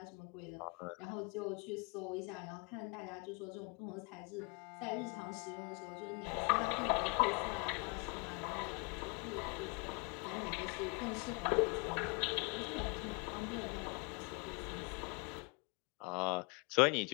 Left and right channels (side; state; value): right; quieter; 31.6 dB